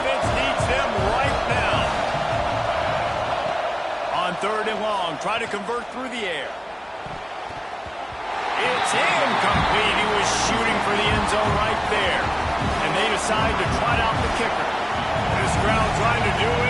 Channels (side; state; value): both; identical; correlation 1.00